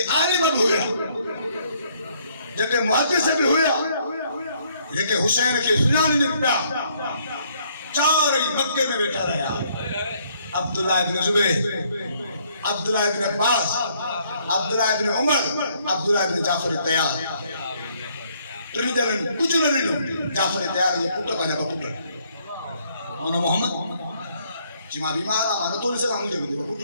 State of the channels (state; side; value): inverted; both; correlation -0.66